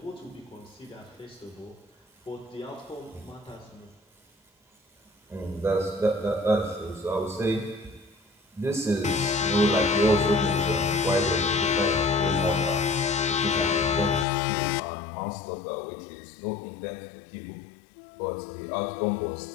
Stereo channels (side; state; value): right; drops out; at 14.2 s